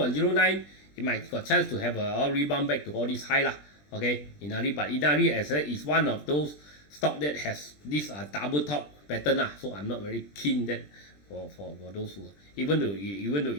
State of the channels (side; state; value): right; late; 20 ms